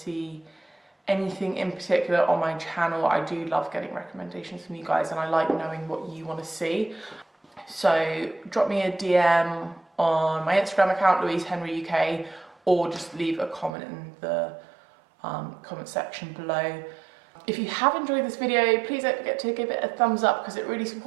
anything in particular on my channel. I do love getting recommendations from you guys, and I like knowing what you want to see. So drop me a DM on my Instagram account, louisehenryuk, or just leave a comment in the comment section below. If you have enjoyed this video, please don't forget to give it a thumbs up, because it really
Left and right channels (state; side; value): drops out; left; at 13.7 s